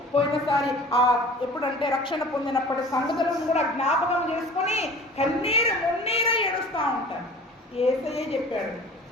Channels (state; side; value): normal; both; correlation 0.43